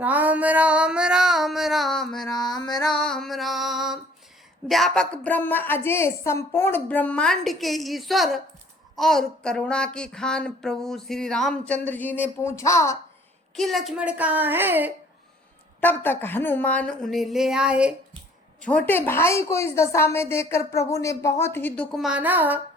राम राम राम राम राम राम। व्यापक ब्रह्म अजय संपूर्ण ब्रह्मांड के ईश्वर और करुणा की खान प्रभु श्री रामचंद्र जी ने पूछा कि लक्ष्मण कहाँ है। तब तक हनुमान उन्हें ले आए। छोटे भाई को इस दशा में देखकर प्रभु ने बहुत ही दुख माना।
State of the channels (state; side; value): normal; both; correlation 0.56